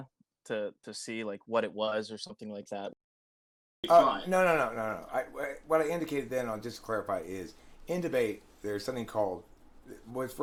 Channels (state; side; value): identical; both; correlation 1.00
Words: to see like what it was or something like that. No. What I indicated then, I'll just clarify, is in debate there's something called, what's